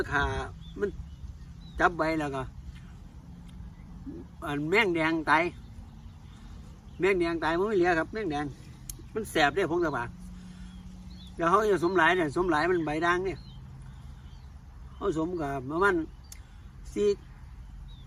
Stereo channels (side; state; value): both; identical; correlation 1.00